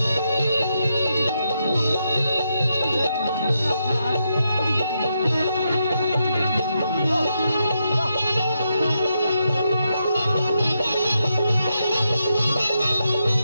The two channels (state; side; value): inverted; both; correlation -0.82